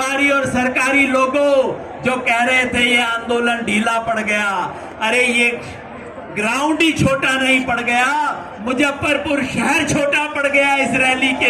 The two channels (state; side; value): identical; both; correlation 1.00